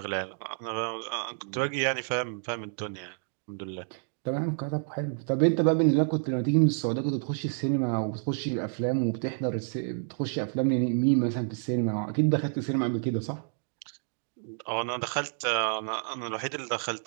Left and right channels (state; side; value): silent; left; digital silence